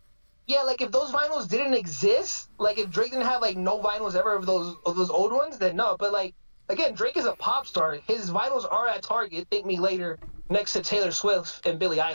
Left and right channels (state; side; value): inverted; both; correlation -1.00